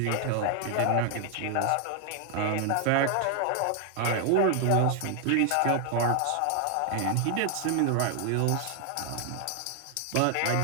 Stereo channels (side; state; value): both; different; correlation 0.00